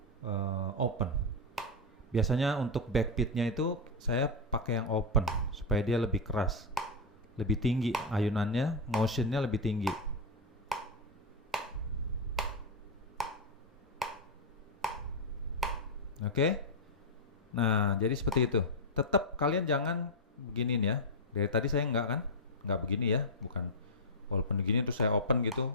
open. Biasanya untuk backbeatnya itu saya pakai yang open supaya dia lebih keras, lebih tinggi ayunannya, motionnya lebih tinggi. Oke. Nah, jadi seperti itu. Tetap kalian jangan beginiin ya. Dari tadi saya nggak begini ya, bukan. Walaupun begini terus saya open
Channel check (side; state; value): both; normal; correlation 0.02